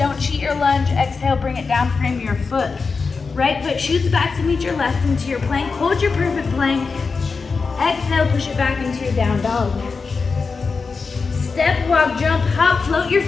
cheat your lunge. Exhale, bring it down, frame your foot. Right foot shoots back to meet your left into your plank. Hold your perfect plank. Exhale, push it back into your down dog. Step, walk, jump, hop, float your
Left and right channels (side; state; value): right; quieter; 4.7 dB